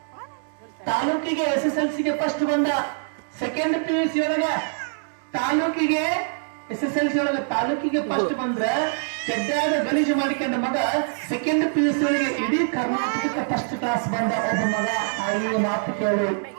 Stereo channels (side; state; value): left; silent; digital silence